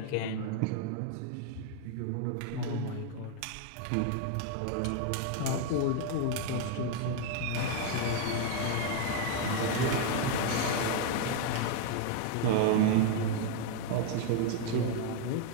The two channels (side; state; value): both; different; correlation 0.01